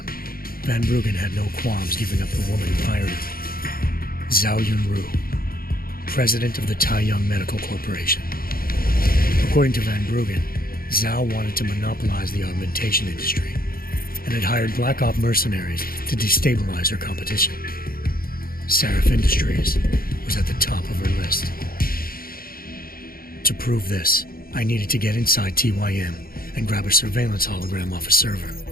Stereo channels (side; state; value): right; late; 0.43 ms